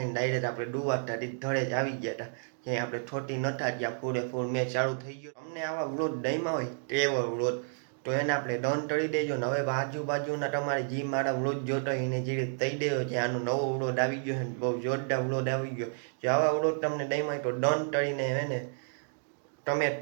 ડાયરેક્ટ આપણે ડુવાતા ધડે જ આવી ગયા હતા ક્યાંય આપણે થોટી નતા ગયા પૂરેપૂર મેચ ચાલુ થઈ ગયો અમને આવા વ્લોગ દહીંમાં હોય તેવો વ્લોગ તો એને આપણે ડન કરી દેજો ને હવે આજુબાજુના તમારે જે મારા વ્લોગ જોતો હોય એને જે કહી દેજો કે આનો નવો વ્લોગ આવી ગયો છે બહુ જોરદાર વ્લોગ આવી ગયો જો આવા વ્લોગ તમને દહીંમાં તો ડન કરીને એને તમે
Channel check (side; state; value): left; silent; digital silence